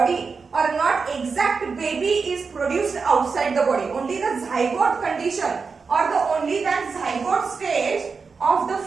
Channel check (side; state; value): left; quieter; 5.0 dB